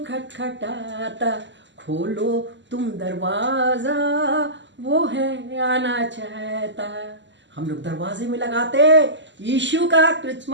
खटखटाता, खोलो तुम दरवाजा, वो है आना चाहता। हम लोग दरवाजे में लगाते यीशु का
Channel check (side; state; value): left; late; 0.53 ms